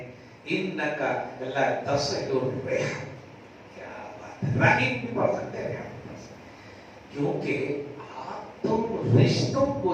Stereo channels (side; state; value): both; identical; correlation 1.00